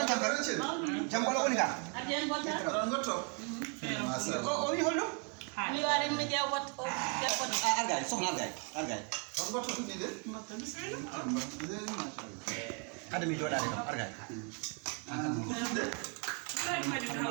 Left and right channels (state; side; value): quieter; left; 37.7 dB